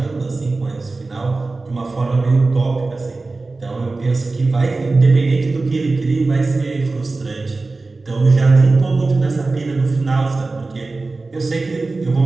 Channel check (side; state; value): left; quieter; 3.5 dB